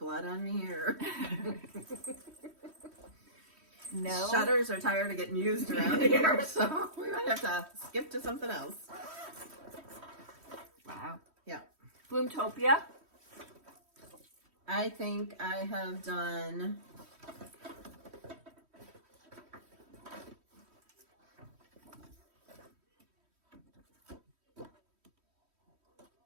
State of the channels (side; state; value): left; late; 3.1 ms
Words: on me, or No. shutters are tired of getting used around here, so we might have to skip to something else. Wow. Yeah. Bloomtopia. I think I have done...